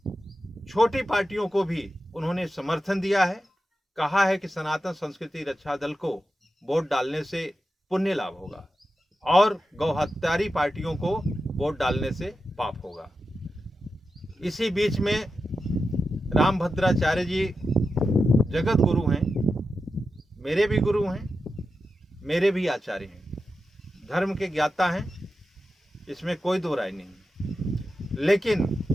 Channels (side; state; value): both; normal; correlation 0.90